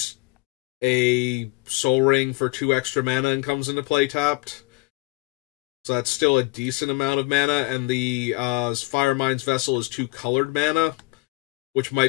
a Soul Ring for 2 extra mana and comes into play tapped. So that's still a decent amount of mana, and the Firemind's Vessel is 2 colored mana, which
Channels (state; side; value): quieter; right; 24.3 dB